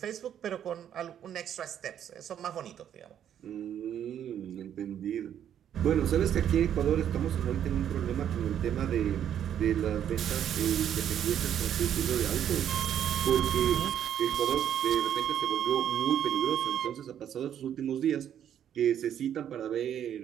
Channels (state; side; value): quieter; left; 9.8 dB